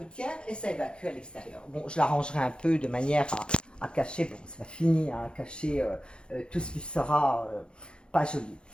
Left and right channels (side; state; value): right; late; 0.053 ms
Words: et ça évacue à l'extérieur. Bon, je l'arrangerai un peu de manière à cacher, bon, c'est pas fini, hein, à cacher tout ce qui sera pas joli.